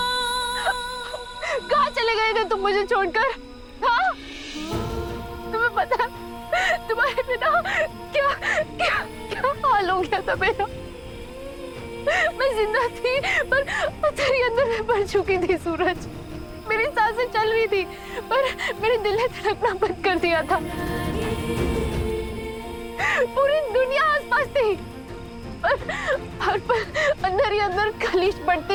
कहाँ चले गए थे तुम मुझे छोड़कर? हाँ? तुम्हें पता है तुम्हारे बिना क्या क्या क्या हाल हो गया था मेरा? मैं जिंदा थी पर तेरे अंदर में पड़ चुकी थी सूरज। मेरी सांसें चल रही थी पर मेरे दिल ने धड़कना बंद कर दिया था। पूरी दुनिया आसपास थी पर हर पल अंदर ही अंदर खलीज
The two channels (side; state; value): both; identical; correlation 1.00